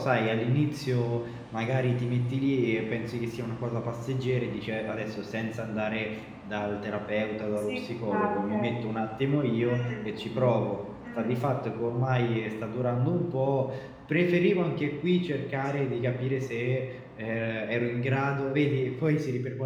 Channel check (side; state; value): both; identical; correlation 1.00